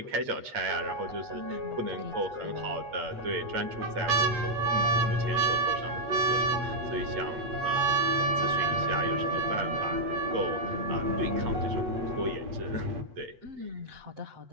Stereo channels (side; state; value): left; late; 8.2 ms